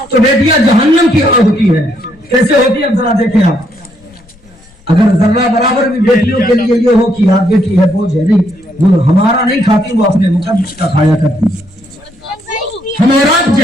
तो बेटियां जहन्नम की आग होती है। कैसे होती है, अब जरा देखें आप। अगर जर्रा बराबर भी बेटियों के लिए ये हो कि यार बेटी है बोझ है, नहीं, वो हमारा नहीं खाती, वो अपने मुकद्दस का खाया करती। हम और आप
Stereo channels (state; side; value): noise; left; rumble, 28 dB below the sound